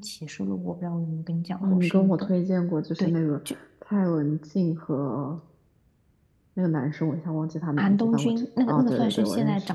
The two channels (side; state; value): both; identical; correlation 1.00